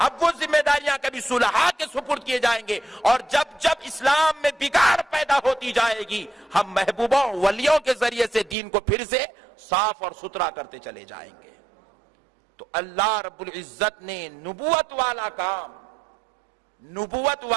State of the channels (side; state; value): left; drops out; at 8.6 s